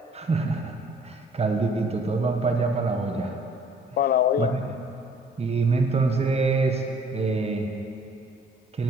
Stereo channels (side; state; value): both; normal; correlation 0.57